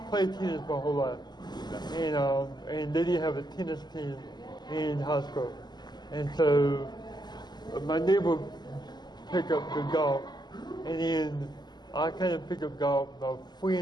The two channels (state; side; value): late; right; 0.21 ms